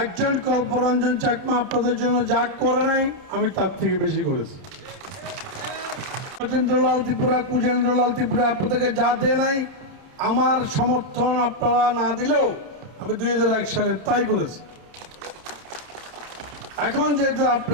একজন কল্পরঞ্জন চাকমা আপনাদের জন্য যা করে নাই, আমি তার থেকে বেশি করেছি। সত্যেন্দ্রলাল ত্রিপুরা, কুজেন্দ্রলাল ত্রিপুরা আপনাদেরকে যা দেয় নাই, আমার সমর্থন আপনারা না দিলেও আমি 2001 সালে তাই করেছি। এখন যেহেতু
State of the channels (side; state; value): left; late; 30 ms